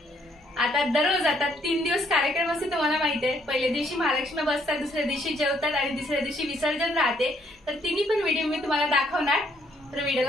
आता दररोज आता 3 दिवस कार्यक्रम असते तुम्हाला माहिती आहे। पहिल्या दिवशी महालक्ष्मी बसतात, दुसऱ्या दिवशी जेवतात आणि तिसऱ्या दिवशी विसर्जन राहते। तर तिन्ही पण व्हिडिओ मी तुम्हाला दाखवणार, तर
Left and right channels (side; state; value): both; normal; correlation 0.68